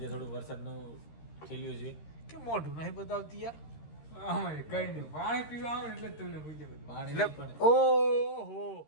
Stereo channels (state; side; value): late; right; 13 ms